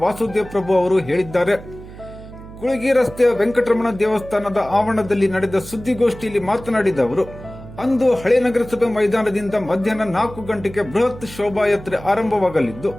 ವಾಸುದೇವ್ ಪ್ರಭು ಅವರು ಹೇಳಿದ್ದಾರೆ. ಕುಳಗಿ ರಸ್ತೆಯ ವೆಂಕಟರಮಣ ದೇವಸ್ಥಾನದ ಆವರಣದಲ್ಲಿ ನಡೆದ ಸುದ್ದಿಗೋಷ್ಠಿಯಲ್ಲಿ ಮಾತನಾಡಿದ ಅವರು, ಅಂದು ಹಳೆ ನಗರಸಭೆ ಮೈದಾನದಿಂದ ಮಧ್ಯಾಹ್ನ 4 ಗಂಟೆಗೆ ಬೃಹತ್ ಶೋಭಾಯಾತ್ರೆ ಆರಂಭವಾಗಲಿದ್ದು,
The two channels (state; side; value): noise; right; hum, 16 dB below the sound